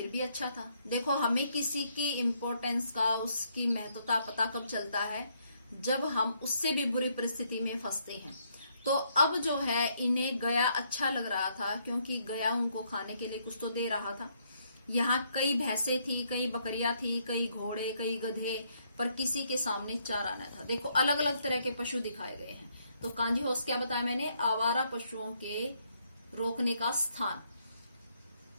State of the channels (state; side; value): inverted; both; correlation -0.72